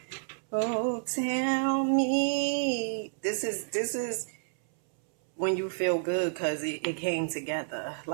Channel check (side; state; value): left; silent; 58 dB below the other